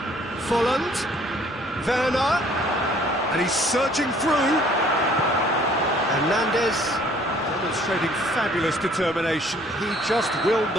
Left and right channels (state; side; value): normal; both; correlation 0.58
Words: Volland. Werner. And he's surging through. Hernandez demonstrating fabulous determination. He just will